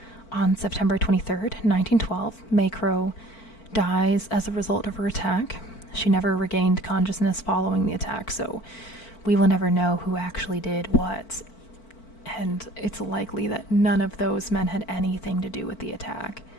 On September 23rd, 1912, Mae Crow dies as a result of her attack. She never regained consciousness following the attack, so we will never know who actually did what. And it's likely that none of those men had anything to do with the attack.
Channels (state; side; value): late; right; 4.5 ms